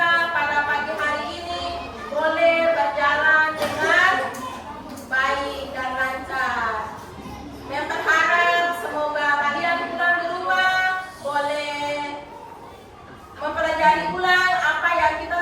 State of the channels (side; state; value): both; identical; correlation 1.00